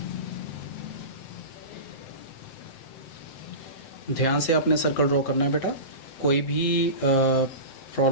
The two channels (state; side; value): late; right; 8.2 ms